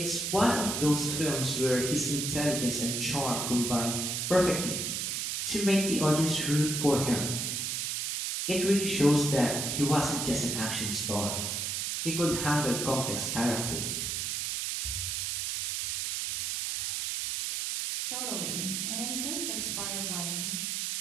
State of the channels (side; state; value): right; noise; hiss, 1 dB below the sound